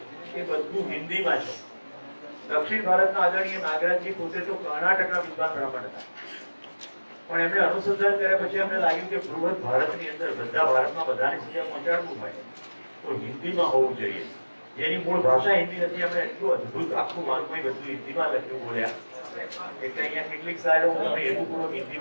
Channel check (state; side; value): inverted; both; correlation -1.00